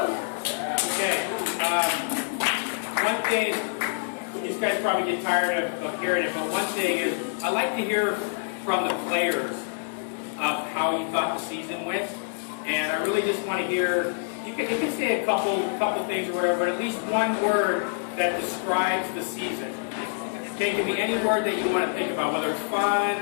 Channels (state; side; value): silent; right; 61 dB below the other